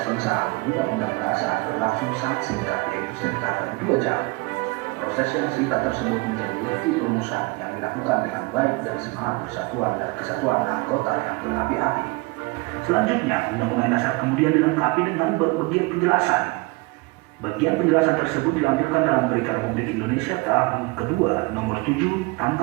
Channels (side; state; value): left; quieter; 25.3 dB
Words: pengesahan Undang-Undang Dasar berlangsung sangat singkat, yaitu sekitar 2 jam. Proses yang singkat tersebut menjadi bukti perumusan yang dilakukan dengan baik dan semangat persatuan dan kesatuan anggota yang berapi-api. Selanjutnya, Undang-Undang Dasar kemudian dilengkapi dengan berbagai penjelasan. Bagian penjelasan tersebut dilampirkan dalam Berita Republik Indonesia tahun kedua nomor 7